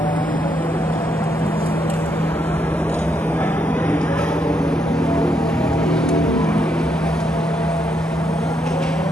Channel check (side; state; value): both; normal; correlation 0.77